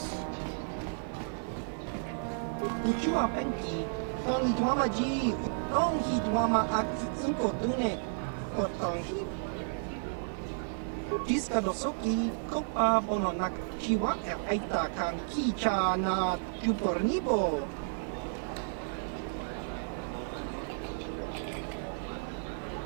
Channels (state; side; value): silent; left; 56 dB below the other